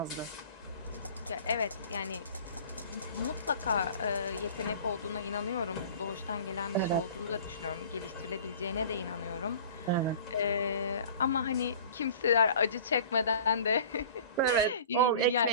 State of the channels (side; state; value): both; inverted; correlation -0.44